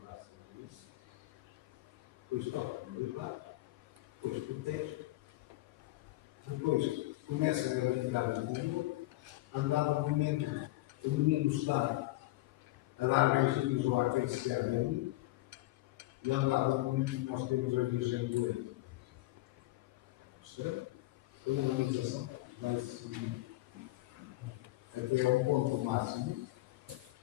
braço no isso. Depois toca no lado. Depois protege. Depois começa a retirar o mundo. Andava no momento, o menino está a dar beijinhos ou a acariciar nele, e andava no momento que nós temos a Virgem do Leite. Percebe? A humanização vai-se até ao ponto máximo,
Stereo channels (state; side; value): quieter; right; 18.6 dB